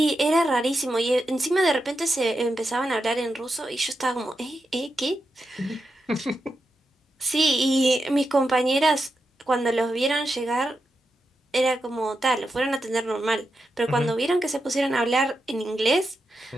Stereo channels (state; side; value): normal; both; correlation 0.87